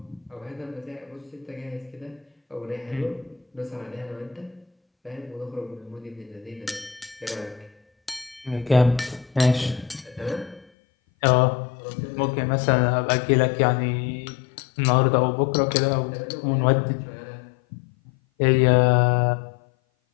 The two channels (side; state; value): right; drops out; at 10.7 s